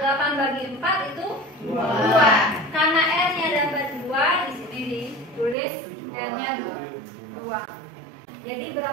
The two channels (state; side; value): drops out; left; at 5.6 s